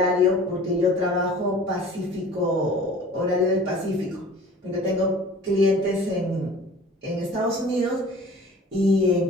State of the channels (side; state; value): both; normal; correlation 0.45